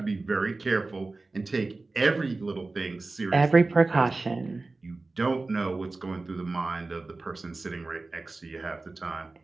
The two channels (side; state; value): left; quieter; 3.4 dB